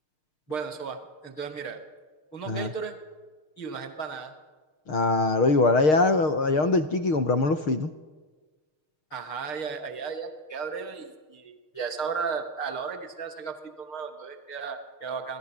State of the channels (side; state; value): right; late; 6.5 ms